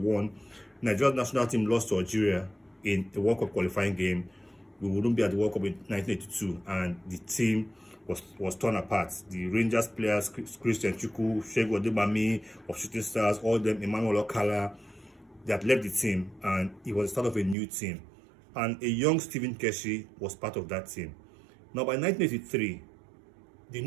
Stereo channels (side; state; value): left; drops out; at 17.6 s